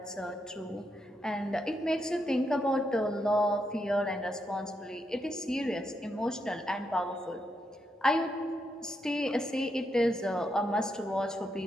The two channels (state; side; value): normal; both; correlation 0.81